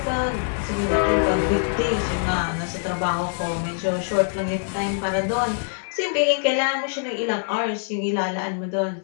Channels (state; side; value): silent; right; 63 dB below the other